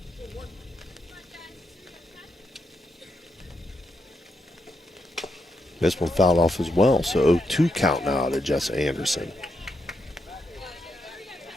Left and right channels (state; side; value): normal; both; correlation 0.82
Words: This one fouled off as well, so 0-2 count now to Jessa Anderson.